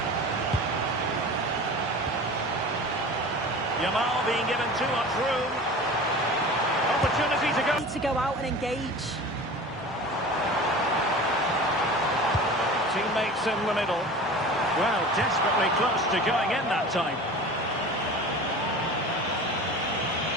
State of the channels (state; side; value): normal; both; correlation 0.36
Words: Yamal being given too much room. Opportunity to go. Need to go out and engage. Teammates in the middle. Well, desperately close to going in that time.